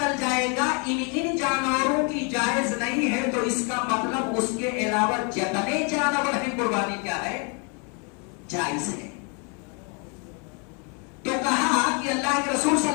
जाएगा इन इन जानवरों की जायज नहीं है, तो इसका मतलब उसके अलावा जितने जानवर हैं कुर्बानी क्या है? जायज है। तो कहा कि अल्लाह के रसूल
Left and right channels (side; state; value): right; quieter; 35.4 dB